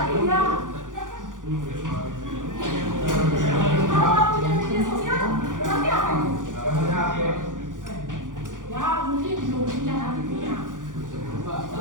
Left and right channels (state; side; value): late; left; 0.88 ms